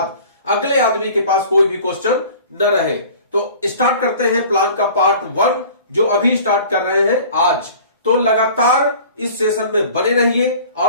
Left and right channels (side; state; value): both; inverted; correlation -0.45